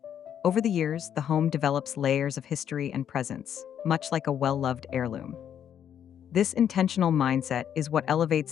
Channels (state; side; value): quieter; right; 9.3 dB